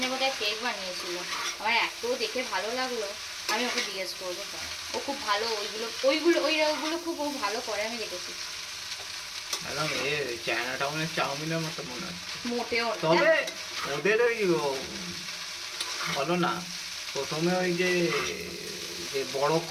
বোধহয় কেক বানিয়েছিল, আমার এত দেখে ভালো লাগলো, আমি ওকে জিজ্ঞেস করবো। ও খুব ভালো ওইগুলো খুব ও ভালো করে, আমি দেখেছি। একদম চায়না টাউনের চাউমিনের মতো মনে হচ্ছে। মোটেও না। তবে ওদের ওই বলো না, প্রথমে ওই যে বড়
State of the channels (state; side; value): identical; both; correlation 1.00